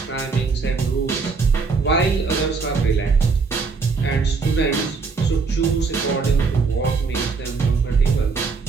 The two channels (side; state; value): left; quieter; 4.7 dB